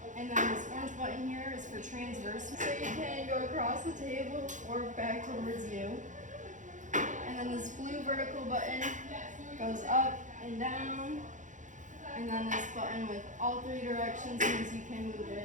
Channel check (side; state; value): left; late; 0.36 ms